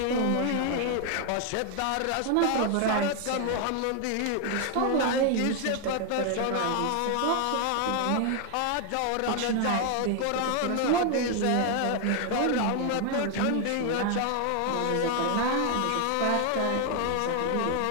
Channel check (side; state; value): both; different; correlation 0.01